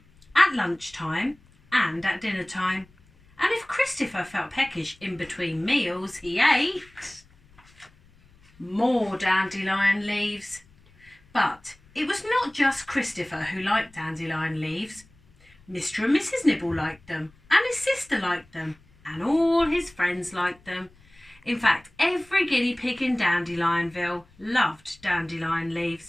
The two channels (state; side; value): noise; left; rumble, 29 dB below the sound